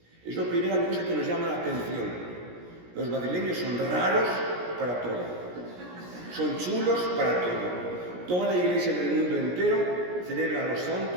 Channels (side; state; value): left; late; 17 ms